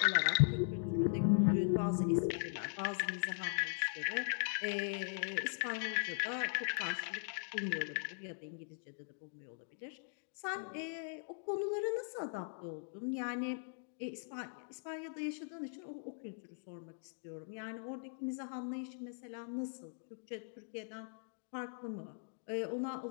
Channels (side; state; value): right; silent; digital silence